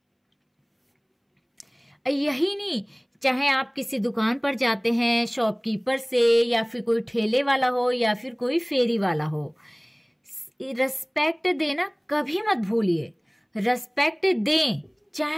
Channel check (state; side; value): identical; both; correlation 1.00